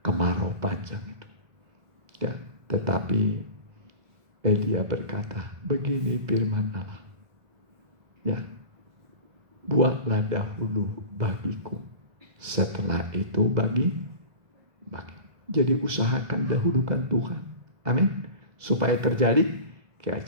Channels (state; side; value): late; left; 2.0 ms